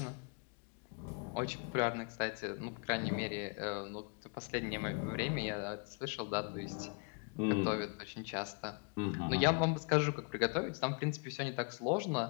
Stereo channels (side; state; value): right; quieter; 36.6 dB